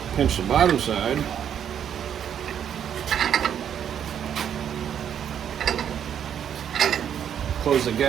pinch the bottom side. Close the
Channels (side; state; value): left; quieter; 9.0 dB